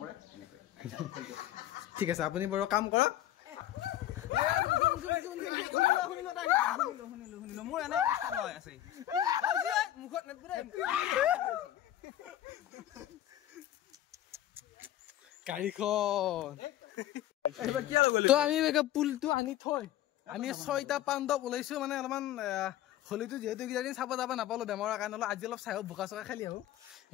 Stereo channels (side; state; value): right; quieter; 13.2 dB